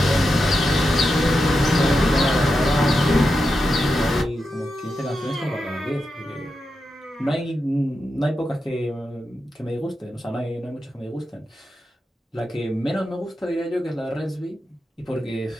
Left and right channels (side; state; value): both; normal; correlation 0.88